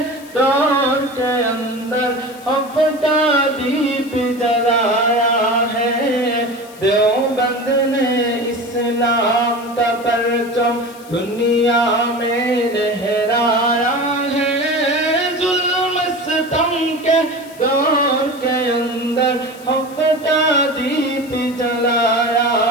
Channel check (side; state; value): left; noise; hiss, 22 dB below the sound